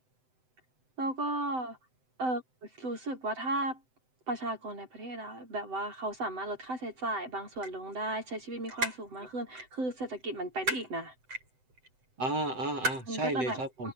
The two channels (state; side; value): late; left; 7.8 ms